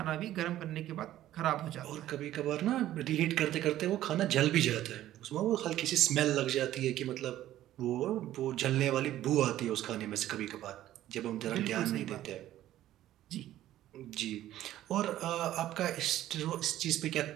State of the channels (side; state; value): left; quieter; 13.4 dB